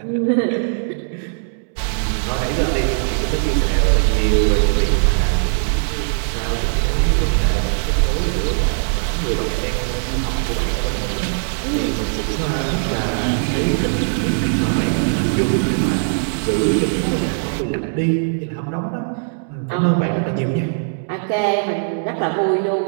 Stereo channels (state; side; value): silent; left; digital silence